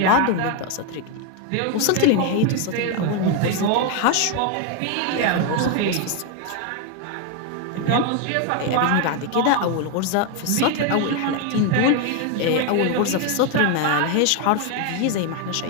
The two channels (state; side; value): different; both; correlation 0.01